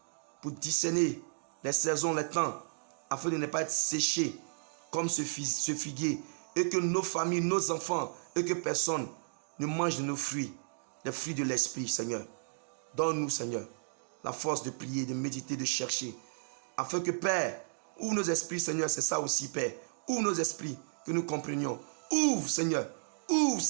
pour discerner les saisons, les temps, afin de ne pas être séchés comme ce figuier, et que nos familles, nos enfants, et que personne ne mange de nos fruits, les fruits de l'esprit, Seigneur. Donne-nous, Seigneur, la force de prier, de méditer, de chercher, afin que, Père, ouvre nos esprits, Seigneur, c'est ça aussi, Père. Ouvre nos esprits, que nous comprenions. Ouvre, Seigneur,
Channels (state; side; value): silent; left; digital silence